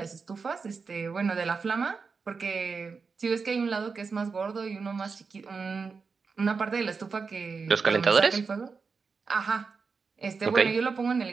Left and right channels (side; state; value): left; quieter; 5.0 dB